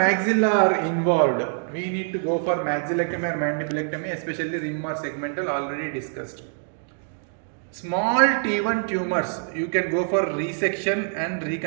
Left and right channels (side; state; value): left; silent; 59 dB below the other